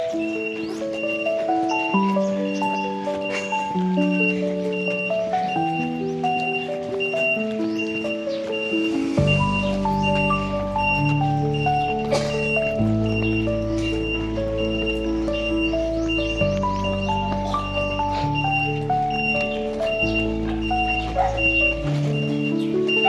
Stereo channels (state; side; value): identical; both; correlation 1.00